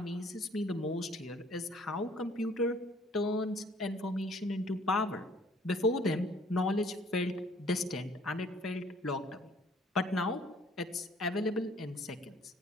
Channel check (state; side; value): normal; both; correlation 0.57